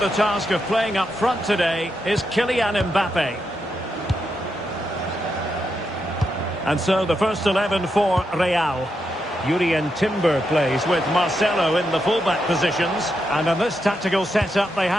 task of playing up front today is Kylian Mbappe. And so the first 11 for Real. Jurrien Timber plays with Marcelo in the fullback positions. And in this tactical setup, they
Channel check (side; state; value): both; normal; correlation 0.84